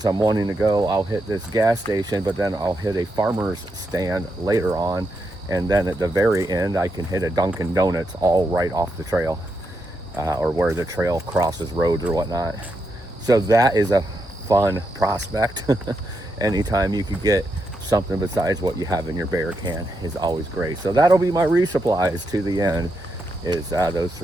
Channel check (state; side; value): normal; both; correlation 0.83